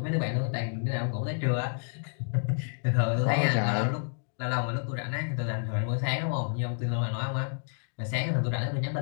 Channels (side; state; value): right; silent; digital silence